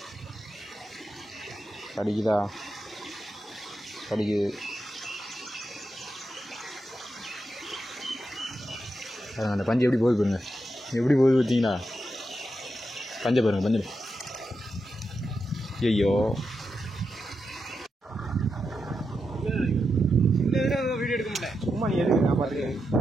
கடிக்குதா கடிக்குது. அந்த பஞ்சு எப்படி போகுது பாருங்க, எப்படி போகுது பார்த்தீங்களா? பஞ்சை பாருங்க பஞ்சு. ஐயோ வீடியோ எடுக்க முடியல, சும்மா நீ எதுக்கு நான் பார்த்துக்கிறேன்.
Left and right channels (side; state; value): both; normal; correlation 0.86